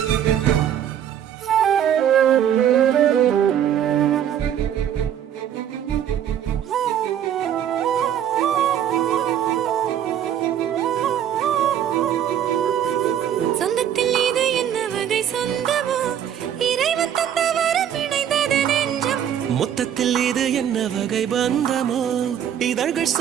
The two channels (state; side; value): quieter; left; 9.8 dB